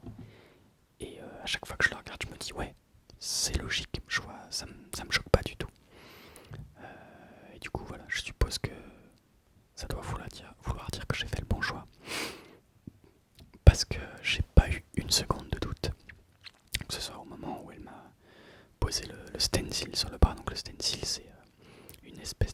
Et à chaque fois que je le regarde, je me dis ouais, c'est logique, je vois, ça me choque pas du tout. Et du coup voilà, je suppose que ça doit vouloir dire que j'ai fait le bon choix. Parce que j'ai pas eu une seconde de doute. Que ce soit au moment où elle m'a posé le stencil sur le bras. Donc le stencil c'est une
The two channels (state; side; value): identical; both; correlation 1.00